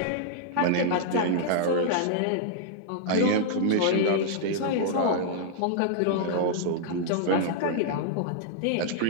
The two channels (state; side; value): different; both; correlation -0.01